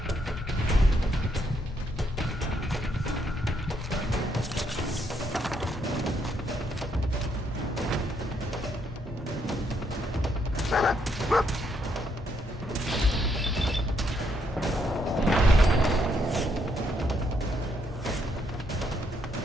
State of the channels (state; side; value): normal; both; correlation 0.74